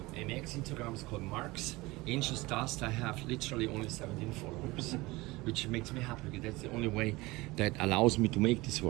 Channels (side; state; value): left; quieter; 21.5 dB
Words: MX Instagram is called Mark's Anxious Dust. I have literally only 17 followers, which makes me happy because that's the only way that allows me to make this